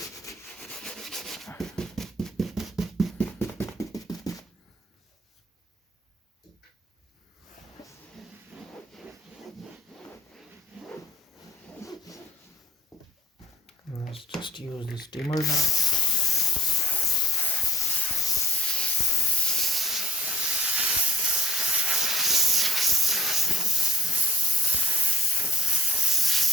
Let's just use the steamer now.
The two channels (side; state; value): both; normal; correlation 0.54